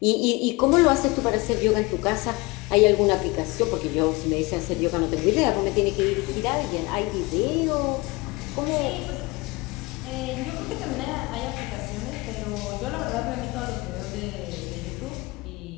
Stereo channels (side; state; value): right; quieter; 24.0 dB